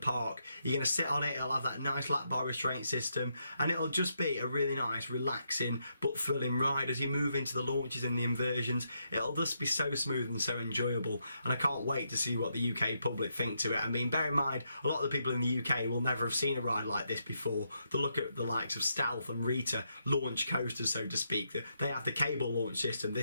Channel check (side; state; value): both; inverted; correlation -0.80